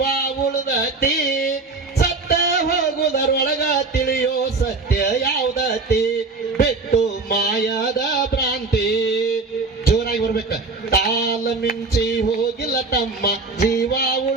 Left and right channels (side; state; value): left; quieter; 3.8 dB